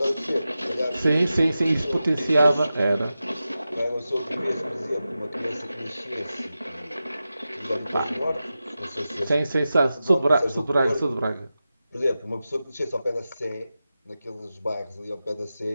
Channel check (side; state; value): both; inverted; correlation -0.92